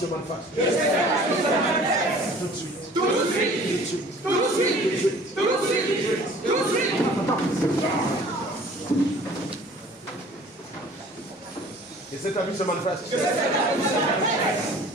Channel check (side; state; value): both; normal; correlation 0.49